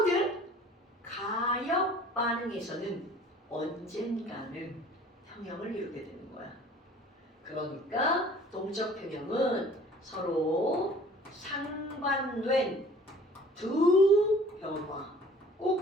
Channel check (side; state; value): both; normal; correlation 0.50